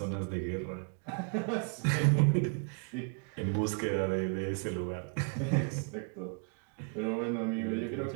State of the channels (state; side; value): quieter; left; 39.4 dB